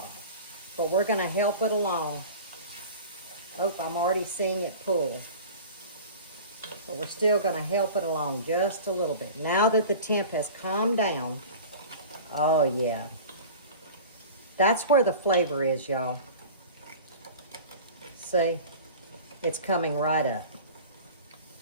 But we're going to help it along. Oh, I'm already seeing it pull. But we're still going to help it along just a little bit. Now that the temp has calmed down, oh yeah. That's where the flavor is, y'all. See? It's coming right up.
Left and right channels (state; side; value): inverted; both; correlation -0.39